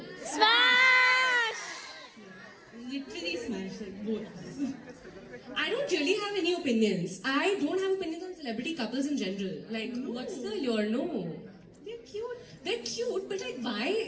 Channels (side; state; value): both; identical; correlation 1.00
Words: Smash! Literally smash like both. I don't really have any opinions. I don't have opinions on celebrity couples in general. Like, what's the your no? They're cute. They're cute, but like,